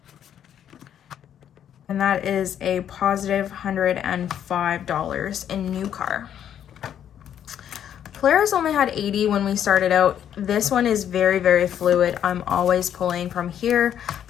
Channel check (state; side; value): quieter; right; 9.7 dB